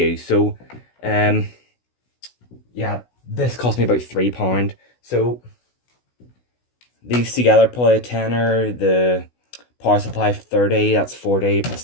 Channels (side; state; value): right; late; 16 ms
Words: So, yeah, this cost me about £3. So, these together, probably a tenner. The power supply, 30. That's 40.